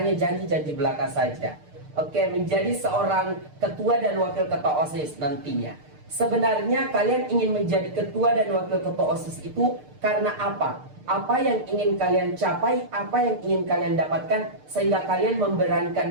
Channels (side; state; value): left; late; 6.6 ms